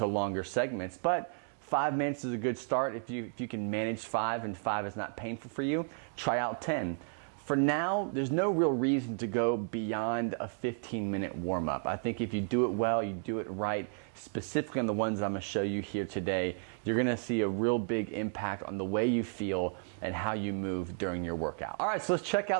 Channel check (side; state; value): left; silent; 56 dB below the other